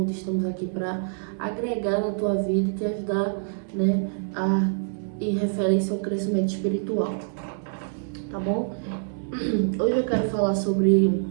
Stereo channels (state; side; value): silent; left; digital silence